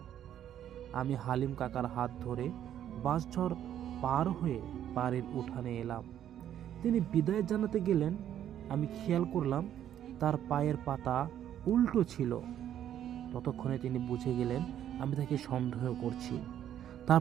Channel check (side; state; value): left; quieter; 10.6 dB